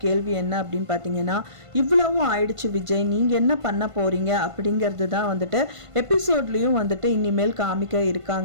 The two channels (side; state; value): left; late; 1.5 ms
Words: கேள்வி என்ன அப்படின்னு பார்த்தீங்கன்னா, இவ்வளவும் ஆயிடுச்சு விஜய், நீங்கள் என்ன பண்ண போகிறீங்க அப்படிங்கிறது தான் வந்துட்டு எபிசோட்லேயும் வந்துட்டு இனிமேல் காமிக்க